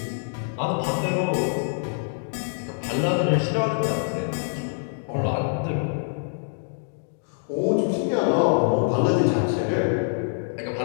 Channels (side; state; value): right; silent; digital silence